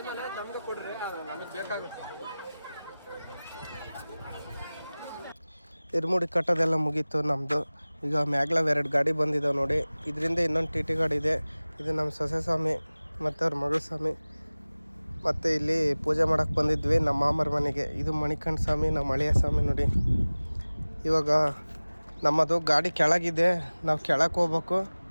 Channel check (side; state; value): both; inverted; correlation -0.99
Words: ನಮ್ಗೆ ಕೊಡ್ರಿ ನಮಗೆ ಬೇಕಾಗುತ್ತೆ. ಇರ್ಮುಡಿ ಕಟ್ಟೋದೆಲ್ಲ ಮುಗೀತು ನಮ್ಮದು. ಈಗ ಮ್ಯಾಗ್ಲಾವ್ 2 ಗಾಡಿ ಬಂದಿದ್ದಾವೆ ನೋಡಿ. ಇದರಿಂದ ಇನ್ನೊಂದು ಟಿ ಟಿ ಗಾಡಿ ಇದೆ. ಇದು ನಮ್ಮ ಸೊಸೆ ಸ್ವಾಮಿ ಮತ್ತು ಅವ್ರ ಮಗಳ ಸ್ವಾಮಿ. ಮತ್ತು ಇಲ್ಲಿ ಪೂಜೆ ಮಾಡೋಕ್ಕೆ ಬಂದಿದ್ವಿ ನಮ್ಮ ಮಾಮರ ಮನೆಗೆ. ಇದು ಮಣಿಕಂಠ ಸ್ವಾಮಿ, ನಮ್ಮ ಹಳೆಯ ಸ್ವಾಮಿ ನೋಡಿ. ಇವಾಗ ನಮ್ಮದು ಗಾಡಿ ಕೆಳಗಿದೆ, ನಾವು ಕೆಳಕ್ಕೆ ಹೋಗ್ಬೇಕು.